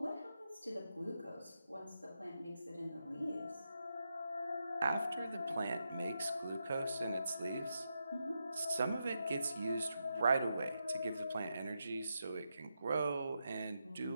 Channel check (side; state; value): both; inverted; correlation -0.85